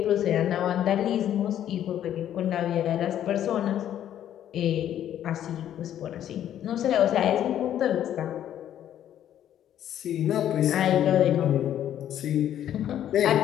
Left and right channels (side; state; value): right; quieter; 10.9 dB